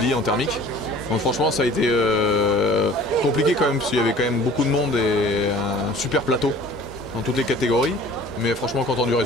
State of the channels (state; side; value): normal; both; correlation 0.47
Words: en thermique. Donc franchement ça a été compliqué quand même parce qu'il y avait quand même beaucoup de monde et un super plateau dans toutes les catégories, mais franchement content du